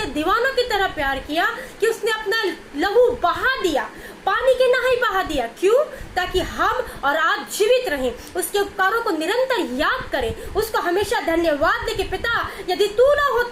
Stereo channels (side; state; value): both; identical; correlation 1.00